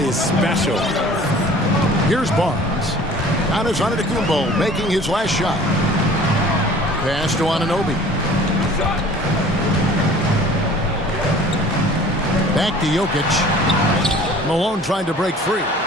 special. Here's Barnes. Giannis Antetokounmpo making his last shot. Pass to Anunoby. Back to Jokic. Malone trying to break free.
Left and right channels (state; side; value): normal; both; correlation 0.48